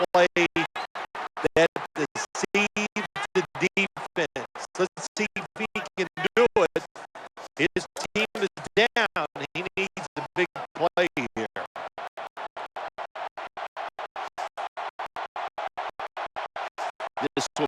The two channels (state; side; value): identical; both; correlation 1.00